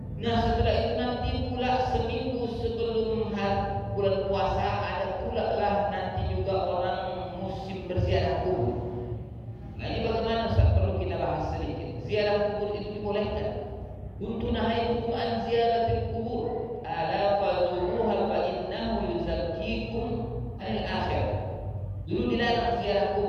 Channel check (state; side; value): identical; both; correlation 1.00